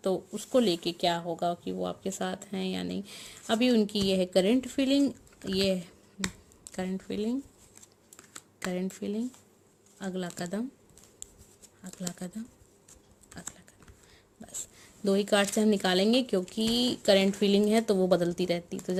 तो उसको लेके क्या होगा कि वो आपके साथ हैं या नहीं। अभी उनकी ये है करंट फीलिंग, ये करंट फीलिंग, करंट फीलिंग, अगला कदम, अगला कदम, अगला कदम। बस 2 ही कार्ड से हम निकालेंगे, क्योंकि करंट फीलिंग है तो वो बदलती रहती, तो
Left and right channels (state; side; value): identical; both; correlation 1.00